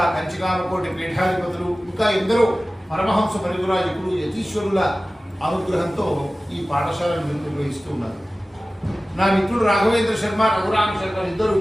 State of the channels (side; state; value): both; normal; correlation 0.97